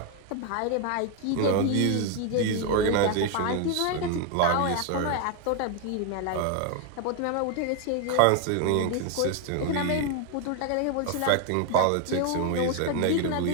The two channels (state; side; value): different; both; correlation 0.01